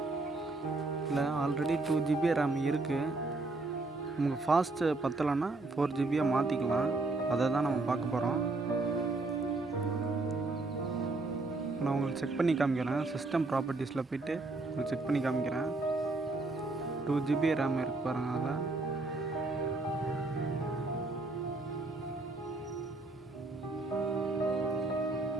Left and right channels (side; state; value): left; quieter; 3.3 dB